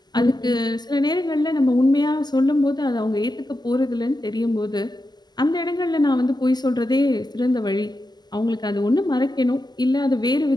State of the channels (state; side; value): late; right; 0.20 ms